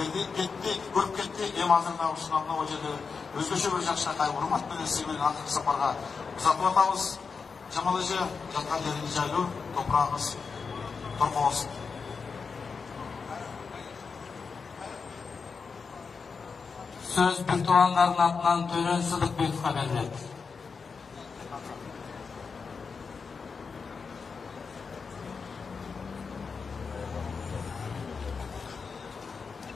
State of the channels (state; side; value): quieter; right; 5.2 dB